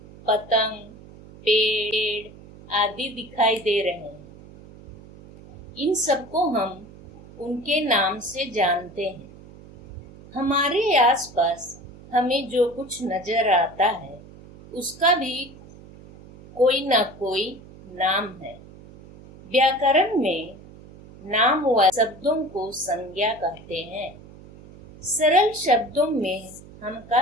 पतंग, पेड़ आदि दिखाई दे रहे हैं। इन सबको हम उनके नाम से जानते हैं। हमारे आसपास हमें जो कुछ नजर आता है उसका भी कोई ना कोई नाम है। व्याकरण में नाम व शब्दों को संज्ञा कहते हैं। सरल शब्दों में हम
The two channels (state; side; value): noise; right; hum, 20 dB below the sound